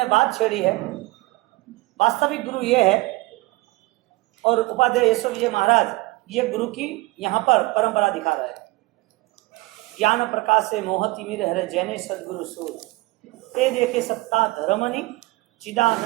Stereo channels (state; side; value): quieter; left; 22.1 dB